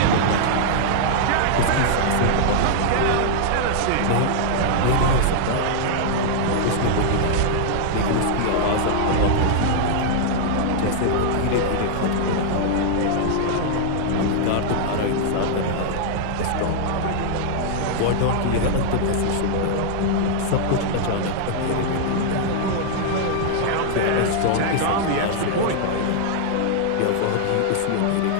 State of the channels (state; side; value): different; both; correlation -0.01